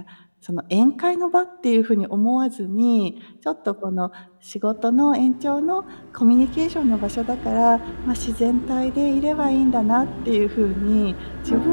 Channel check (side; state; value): both; inverted; correlation -1.00